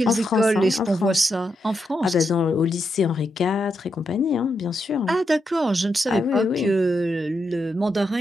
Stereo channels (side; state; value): both; normal; correlation 0.83